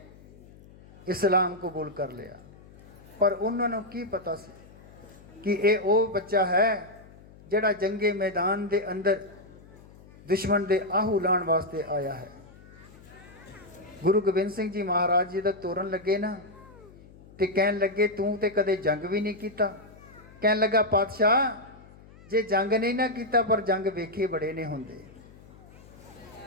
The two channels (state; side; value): noise; left; hum, 22 dB below the sound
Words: इस्लाम कबूल कर लिया। पर उन्होंने की पता सी कि ये वो बच्चा है जिहड़ा जंगे मैदान दे अंदर दुश्मन दे आहू लाण वास्ते आया है। गुरु गोबिंद सिंह जी महाराज जी दा तोरन लगे ना ते कहन लगे तू ते कदे जंग भी नहीं कीता। कहन लगा पातशाह जे जंग नहीं ना कीता पर जंग वेखे बड़े ने हुंदे।